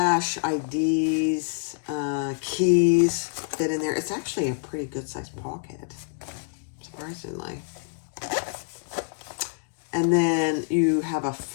IDs, keys fit in there. It's actually a pretty good sized pocket, surprisingly. And then you have a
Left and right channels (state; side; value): silent; right; 59 dB below the other